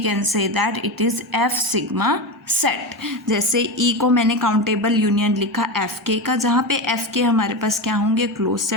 say that it is F sigma set. जैसे ई को मैंने काउंटेबल यूनियन लिखा एफ के का, जहाँ पे एफ के हमारे पास क्या होंगे, क्लोज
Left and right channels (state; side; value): normal; both; correlation 0.19